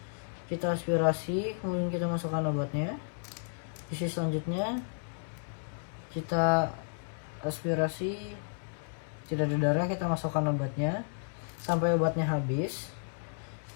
kita aspirasi, kemudian kita masukkan obatnya. Sisi selanjutnya kita aspirasi, tidak ada darah, kita masukkan obatnya sampai obatnya habis.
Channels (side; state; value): right; silent; digital silence